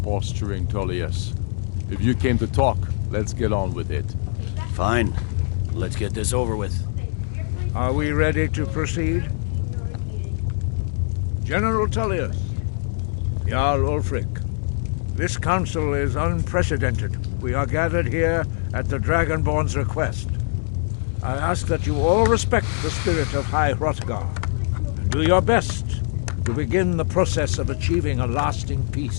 posturing, Tullius. If you came to talk, let's get on with it. Fine. Let's get this over with. Are we ready to proceed? General Tullius, Jarl Ulfric, this council is unprecedented. We are gathered here at the Dragonborn's request. I ask that you all respect the spirit of High Hrothgar and do your best to begin the process of achieving a lasting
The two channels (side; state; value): right; silent; 64 dB below the other